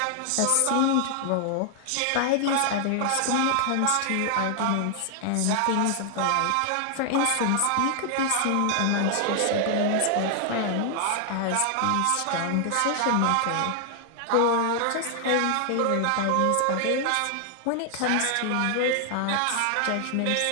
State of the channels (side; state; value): both; different; correlation 0.00